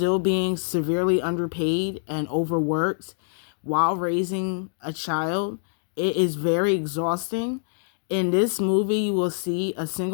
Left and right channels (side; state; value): right; silent; digital silence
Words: being severely underpaid and overworked while raising a child, it is very exhausting. In this movie, you will see a